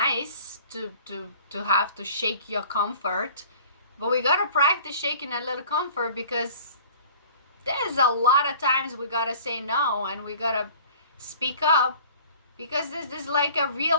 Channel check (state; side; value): inverted; both; correlation -0.47